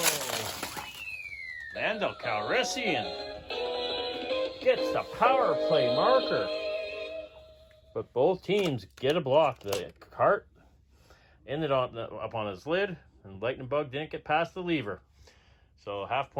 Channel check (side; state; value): both; identical; correlation 1.00